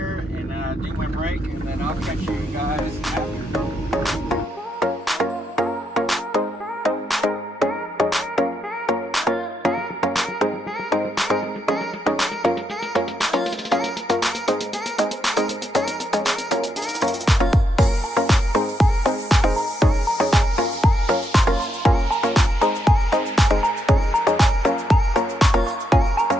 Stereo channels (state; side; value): normal; both; correlation 0.80